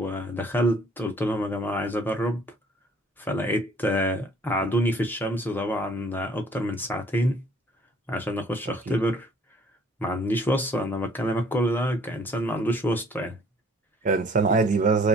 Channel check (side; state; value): both; normal; correlation 0.58